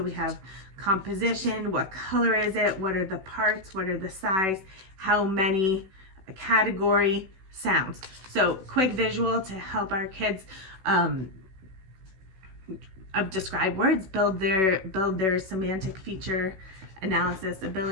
we have composition, what color is it, what are the parts, what are the size, how many, category, sounds. So quick visual to help our kids describe words, build their semantic feature analysis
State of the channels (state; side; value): late; left; 16 ms